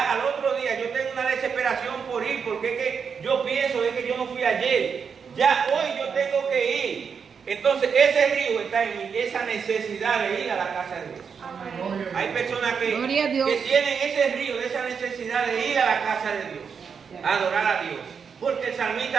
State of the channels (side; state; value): left; quieter; 6.3 dB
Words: al otro día yo tengo una desesperación por ir, porque es que yo pienso es que yo no fui ayer, ya hoy yo tengo que ir. Entonces ese río está en mí, esa necesidad de ir a la casa de Dios. Amén. Hay personas que tienen ese río, esa necesidad de ir a la casa de Dios, a adorar a Dios. Porque el